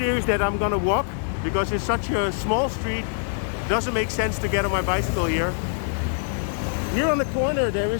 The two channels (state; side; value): silent; right; digital silence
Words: that I'm gonna walk because it's such a small street. Doesn't make sense to get on my bicycle here. Here on the corner there